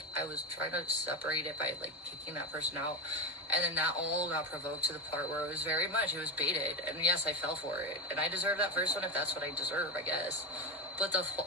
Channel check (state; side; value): normal; both; correlation 0.17